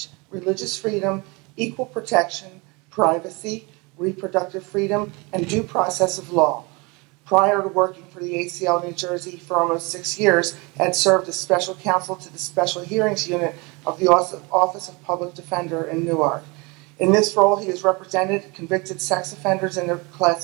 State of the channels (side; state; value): left; quieter; 27.4 dB